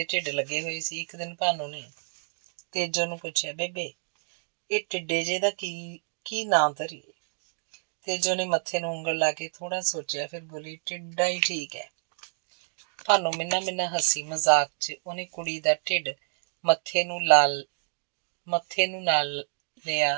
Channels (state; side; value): silent; left; 59 dB below the other